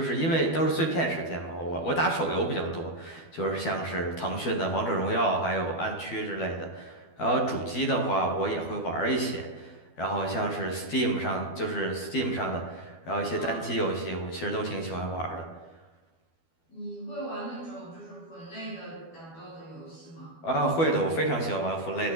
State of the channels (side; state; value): right; late; 12 ms